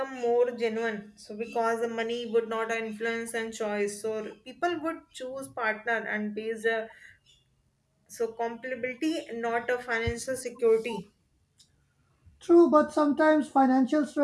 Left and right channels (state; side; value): identical; both; correlation 1.00